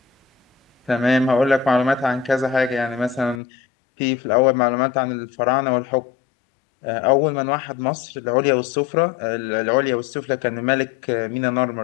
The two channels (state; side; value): drops out; right; at 3.4 s